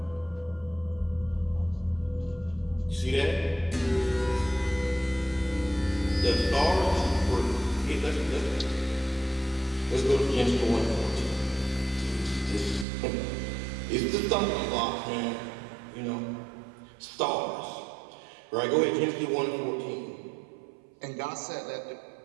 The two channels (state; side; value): drops out; left; at 12.9 s